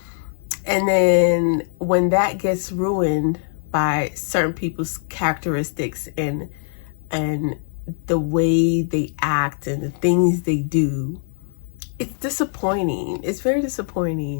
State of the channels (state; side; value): silent; right; 59 dB below the other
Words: And then when that gets ruined by certain people's characteristics and the way they act and the things they do, it's disappointing. It's very